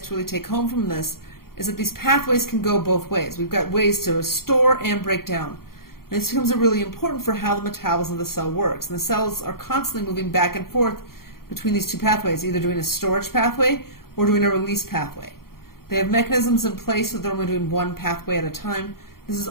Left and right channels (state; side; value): late; right; 0.93 ms